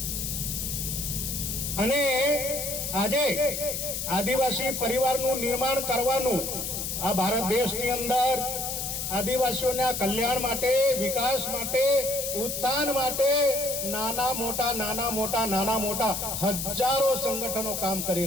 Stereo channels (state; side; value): noise; left; hiss, 3 dB below the sound